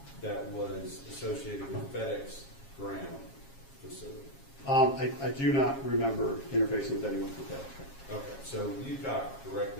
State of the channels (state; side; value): late; right; 7.3 ms